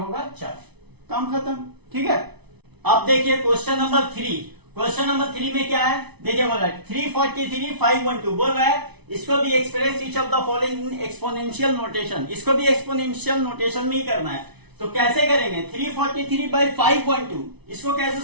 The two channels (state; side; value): late; left; 0.99 ms